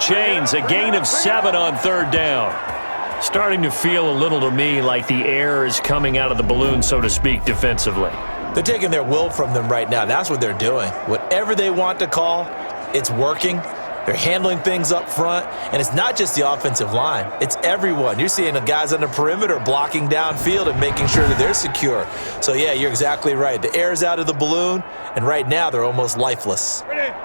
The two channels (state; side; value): inverted; both; correlation -1.00